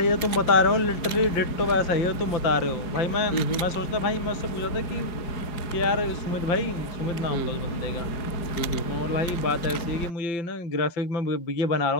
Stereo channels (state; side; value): late; right; 4.8 ms